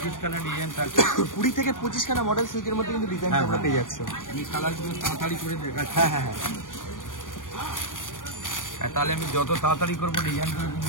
খানা ডিজাইন থাকছে। 20 থেকে 25 খানা মডেল সিল্কের মধ্যে কিন্তু ডিজাইন হ্যাঁ, আমরা পেয়ে যাচ্ছি। আমি কালার গুলো তাড়াতাড়ি করে দেখাচ্ছি। হ্যাঁ হ্যাঁ হ্যাঁ, হ্যাঁ, তাহলে আমি যত তাড়াতাড়ি করবো ডিজাইন গুলো কিন্তু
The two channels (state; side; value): late; right; 0.88 ms